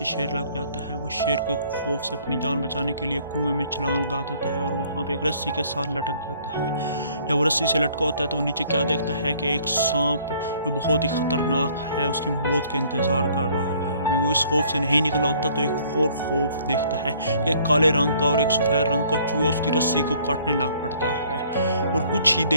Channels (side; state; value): both; inverted; correlation -0.59